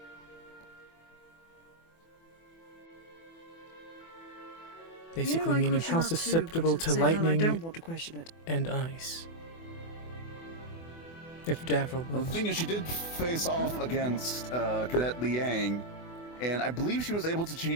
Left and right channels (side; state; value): right; late; 24 ms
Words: Basically I meaning question how that too, susceptible but at to the same time, lightning I don't want to question it. and ice. If Davro Well, was. the thing is, she did face off against Cadet Liang, and I believe she was able to